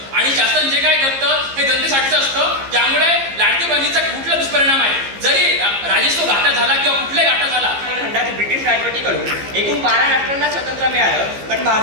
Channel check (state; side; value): late; left; 15 ms